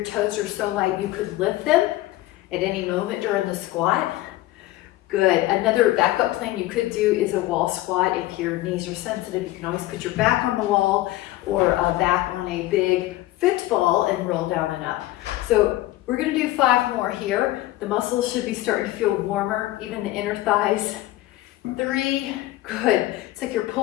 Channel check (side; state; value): right; quieter; 16.6 dB